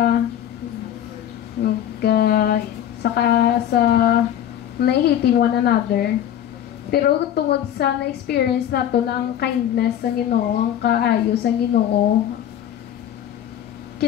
saka sa nahihiting one another pero tungod sa na-experience nato na ang kindness ng Ginoo ang kaayos ng Ginoo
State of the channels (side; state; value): right; quieter; 10.7 dB